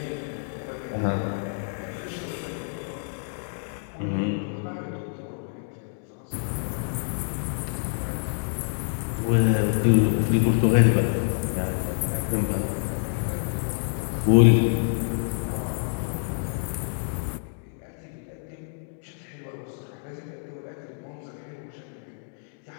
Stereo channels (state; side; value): silent; right; digital silence